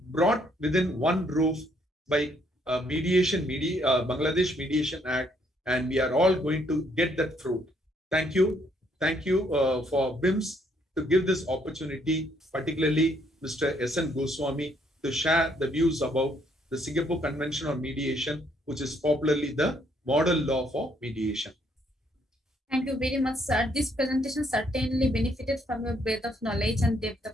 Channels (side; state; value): both; normal; correlation 0.69